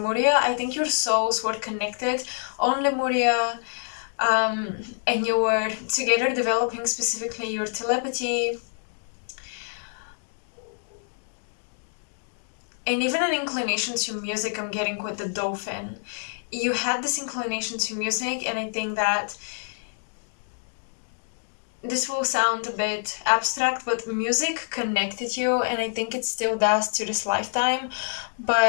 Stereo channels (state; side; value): silent; right; digital silence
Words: I think your souls were connected on Lemuria, and you were together developing specifically your telepathy and even an inclination to music. I'm getting with the dolphin. You had this inclination to music, and I think that this will sound a bit abstract, but music connected you, and I think it still does to this lifetime.